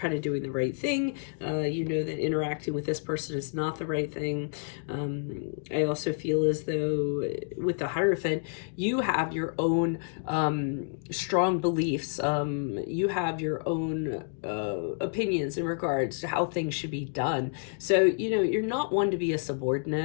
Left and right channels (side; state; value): right; silent; 58 dB below the other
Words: of doing the right thing. You know that interacting with this person is not the right thing. I also feel as though with the Hierophant, you have your own strong beliefs. You have your own opinions in regards to how things should be done. So, you know, you're not one to be a